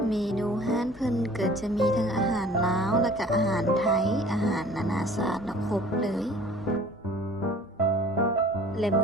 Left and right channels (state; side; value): normal; both; correlation 0.49